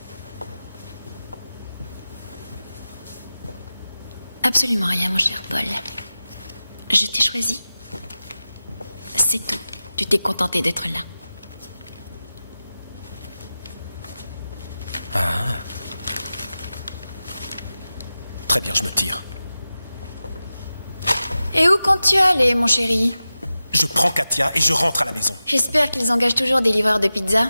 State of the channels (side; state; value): both; inverted; correlation -0.94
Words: Absolument rien, mon cher Paul. Je t'ai choisi. C'est tout. Tu t'es contenté d'être là. Ah. Très bien, je me tire. Et où comptes-tu aller, mon chéri? Je prends Katia et je rentre à la maison. J'espère qu'ils engagent toujours des livreurs de pizza.